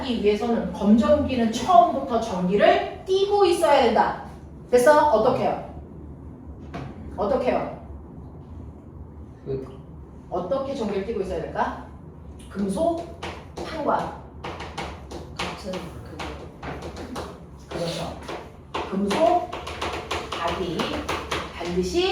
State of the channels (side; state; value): both; identical; correlation 1.00